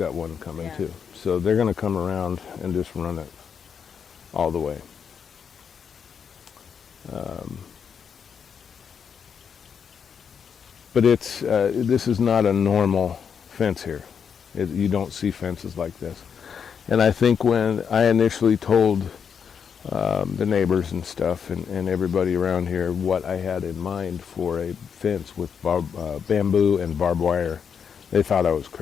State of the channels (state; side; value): quieter; right; 7.0 dB